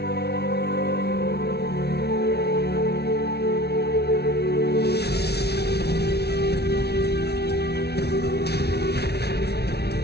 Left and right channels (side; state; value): right; late; 0.48 ms